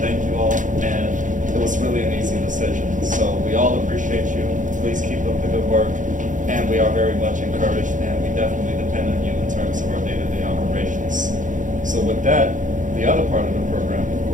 you all, and it was really an easy decision. So we all appreciate you. Please keep up the good work, and we are very much encouraged, and we definitely depend on you in terms of our day-to-day operations. So with that, the other part of the program, of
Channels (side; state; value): left; late; 0.37 ms